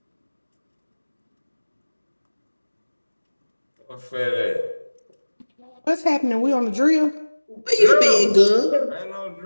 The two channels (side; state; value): both; inverted; correlation -1.00